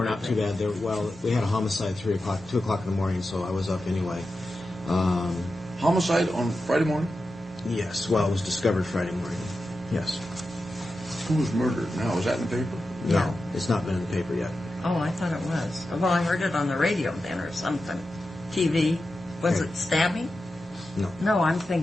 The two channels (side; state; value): both; normal; correlation 0.91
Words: not too bad. We had a homicide 2 o'clock in the morning, so I was up anyway. Homicide on Friday morning? Yes. Well, it was discovered Friday morning. Yes. Who was murdered? Now, was that in the paper? No, Yeah. it's not been in the paper yet. Oh, I thought it was. Well, I heard it on the radio then or something. TV. Was Okay. it stabbing? No. No, I'm